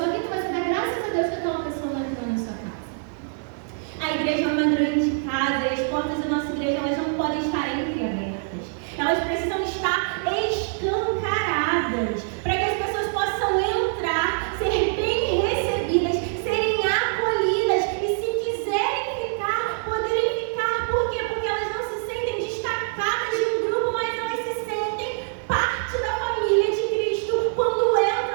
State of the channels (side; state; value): left; silent; digital silence